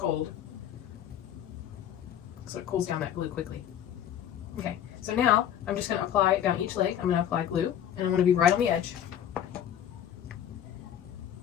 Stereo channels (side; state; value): right; quieter; 10.1 dB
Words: So it cools down that glue quickly. Okay, so now I'm just going to apply down each leg. I'm going to apply glue, and I'm going to be right on the edge.